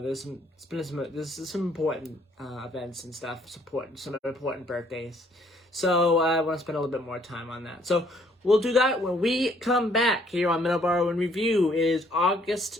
some important events and stuff, some important birthdays. So I want to spend a little bit more time on that. So we'll do that when we come back here on Middleboro in Review. It is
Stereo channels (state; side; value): normal; both; correlation 0.64